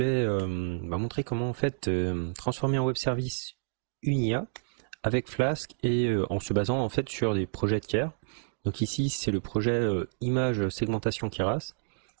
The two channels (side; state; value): left; silent; digital silence